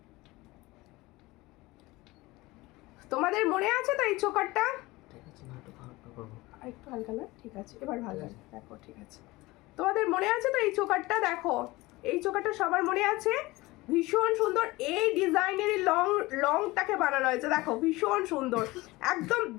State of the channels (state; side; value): quieter; right; 20.7 dB